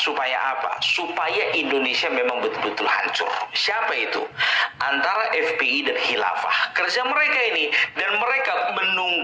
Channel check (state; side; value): identical; both; correlation 1.00